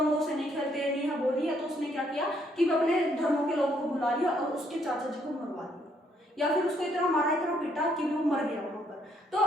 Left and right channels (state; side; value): normal; both; correlation 0.70